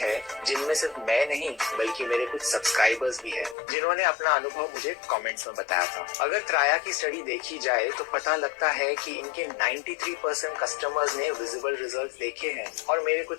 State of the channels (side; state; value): right; drops out; at 3.6 s